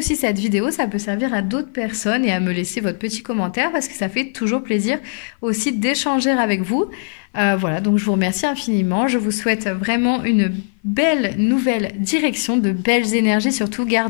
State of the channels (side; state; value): right; silent; 55 dB below the other